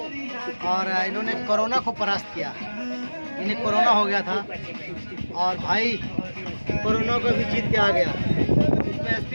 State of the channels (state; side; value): inverted; both; correlation -1.00